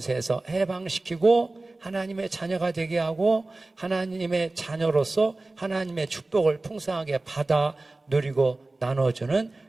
해방시키고 하나님의 자녀가 되게 하고, 하나님의 자녀로서 하나님의 축복을 풍성하게 받아 누리고 나눠주는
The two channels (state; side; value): quieter; left; 3.0 dB